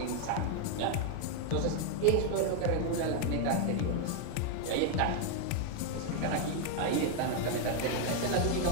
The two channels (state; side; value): different; both; correlation 0.00